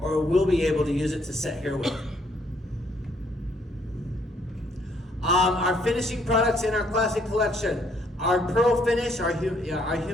we'll be able to use it to set hair with. Our finishing products in our classic collection. Our Pearl Finish, our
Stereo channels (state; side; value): normal; both; correlation 0.68